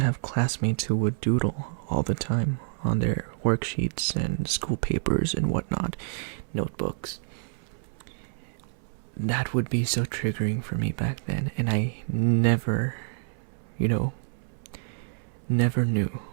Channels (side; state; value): left; silent; 59 dB below the other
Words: have classmates who would doodle all the time on their worksheets and school papers and whatnot, notebooks. That would be so triggering for me back then, and I never knew